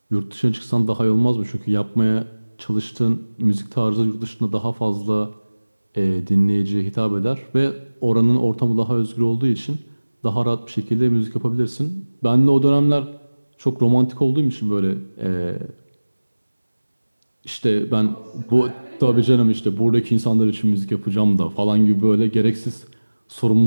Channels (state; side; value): inverted; both; correlation -1.00